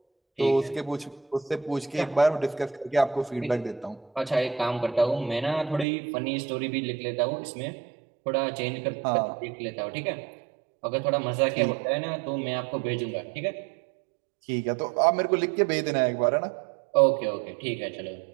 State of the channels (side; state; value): left; drops out; at 5.9 s